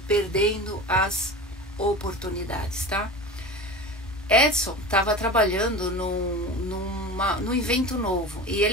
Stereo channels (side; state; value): both; normal; correlation 0.31